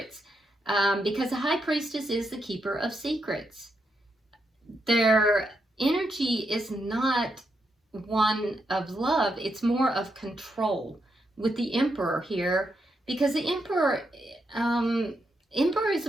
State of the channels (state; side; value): normal; both; correlation 0.81